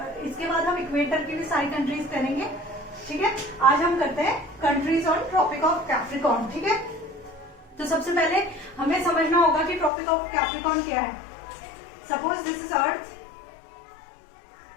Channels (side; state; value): right; drops out; at 9.9 s